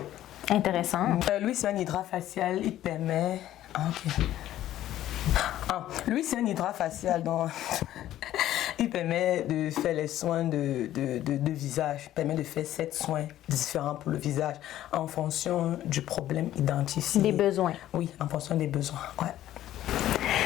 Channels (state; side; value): quieter; right; 13.1 dB